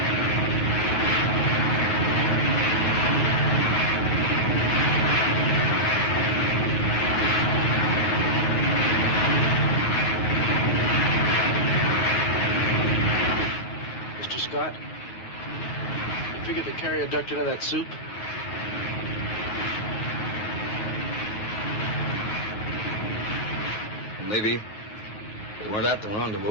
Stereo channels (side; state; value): right; late; 9.5 ms